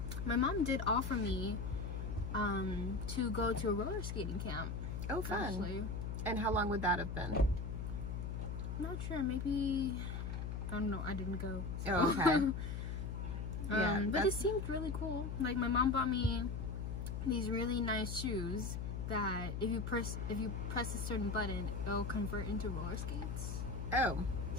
my mom did offer me to go to a roller skating camp. Oh, fun. Actually. And how long would that have been? I'm not sure, maybe, I don't know, I didn't go. So. Oh, okay. Yeah, but it seemed really cool. Like, my mom bought me these really nice shoes that if you press a certain button, it'll convert into roller skates. Oh.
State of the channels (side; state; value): left; noise; hum, 4 dB below the sound